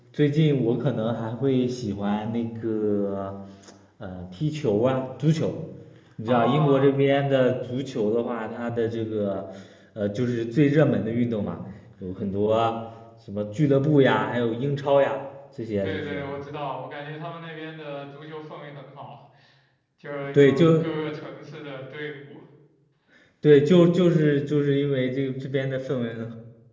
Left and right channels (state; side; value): identical; both; correlation 1.00